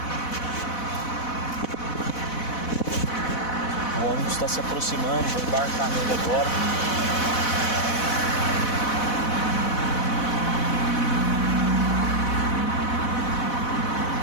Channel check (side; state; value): right; late; 4.1 ms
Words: O ônibus está se aproximando, vou embarcar nele agora.